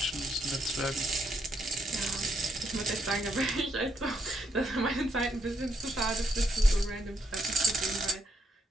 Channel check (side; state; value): both; normal; correlation 0.76